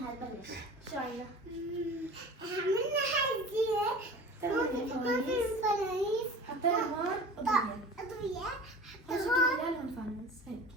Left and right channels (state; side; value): normal; both; correlation 0.39